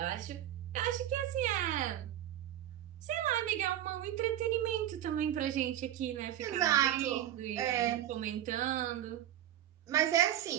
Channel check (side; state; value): left; quieter; 12.0 dB